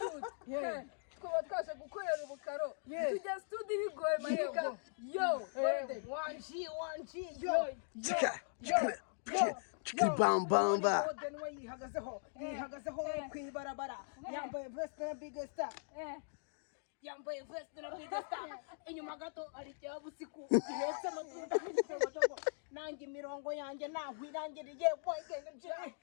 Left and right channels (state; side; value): silent; right; digital silence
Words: twaba twaje gukorera ubukaro tujya studi bigoye mareka Bamba yihagazeho kwibarabara yambaye veste na big star yambaye veste na big star inyuma gato ari cyabusiku ihetse amatunda n'igitogo nanjye imirongo yanjye nahwirangiriye